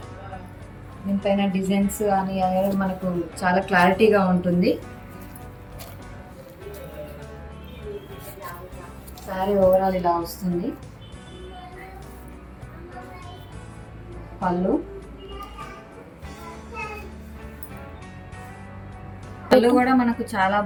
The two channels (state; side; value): identical; both; correlation 1.00